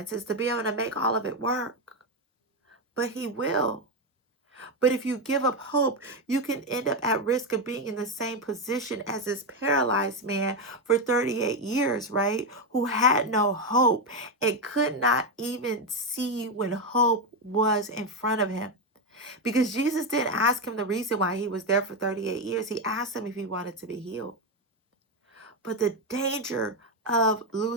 to be able to make all of it work. But He will. But if you give up hope, you can end up at risk of being in the same position as this paralyzed man for 38 years, right? Who had no hope and could not even see when hope was in front of him. Because Jesus didn't ask him the reason why he was there for 38 years. He asked him if he wanted to be healed. But the danger of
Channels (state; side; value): normal; both; correlation 0.08